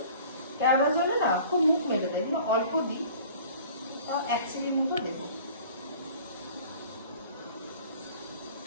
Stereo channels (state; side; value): inverted; both; correlation -0.47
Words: জলে না খুব মুখ মেলে দেয়, অল্প দিই, তাও 1 চিলি মতো দেবো।